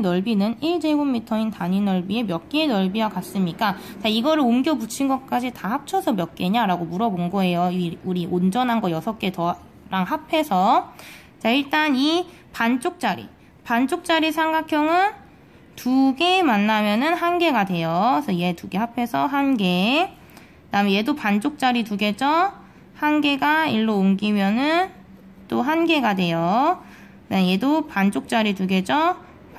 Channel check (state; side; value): identical; both; correlation 1.00